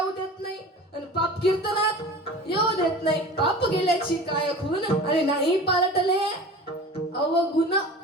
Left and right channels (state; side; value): normal; both; correlation 0.38